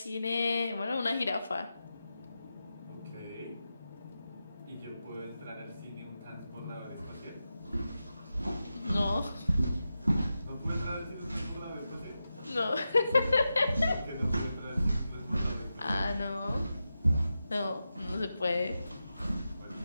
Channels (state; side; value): inverted; both; correlation -0.90